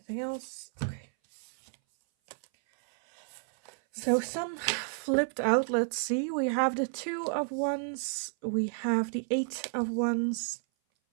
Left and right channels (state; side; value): silent; left; 57 dB below the other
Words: else? Okay. So some flipped out. Let's see. We have the 2 of Wands. We have the 8 of Wands.